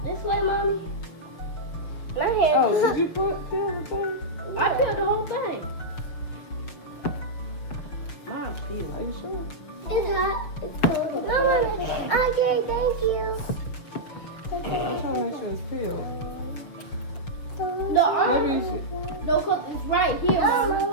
This way, Mommy? My hand. Oh, did you peel the thing? I peeled the whole thing. Mom's peeled. Are you sure? It's hot. It's cold. No, okay, thank you. I'm trying to make sure it's peeled. No, Maybe you should. no, cause it's right here. No,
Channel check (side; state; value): right; late; 6.4 ms